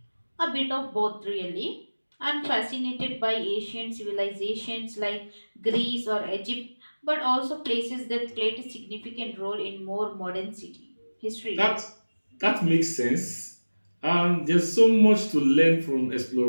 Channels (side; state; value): both; inverted; correlation -1.00